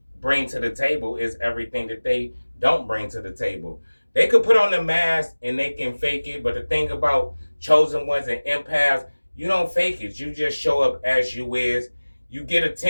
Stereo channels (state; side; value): inverted; both; correlation -1.00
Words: bring to the table is everything that they don't bring to the table. They could put on the mask and they can fake it, but the thing about chosen ones and empaths, you don't fake it. You just show up as you is. You get